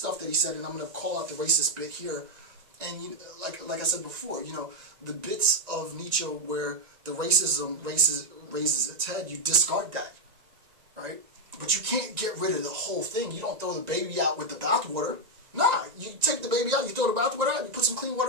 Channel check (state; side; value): late; left; 1.9 ms